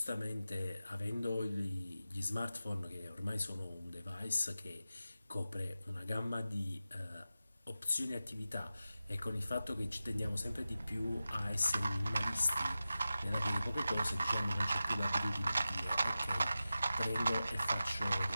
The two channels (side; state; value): both; inverted; correlation -0.93